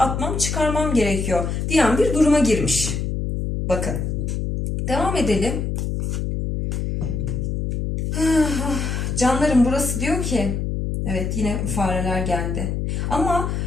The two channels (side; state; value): left; noise; hum, 1 dB below the sound